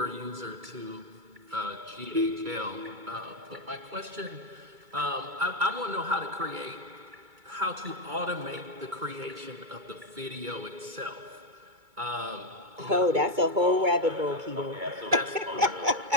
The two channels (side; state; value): left; late; 2.2 ms